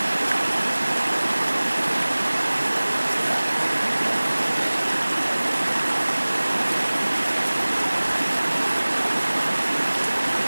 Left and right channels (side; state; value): both; inverted; correlation -1.00